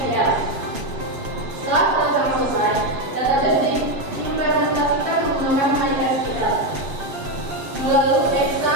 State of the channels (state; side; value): late; left; 7.2 ms